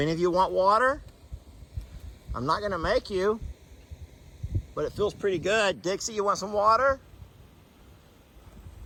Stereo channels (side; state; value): both; identical; correlation 1.00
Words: of you want water? I'm not gonna make you, but it feels pretty good. Dixie, you want some water?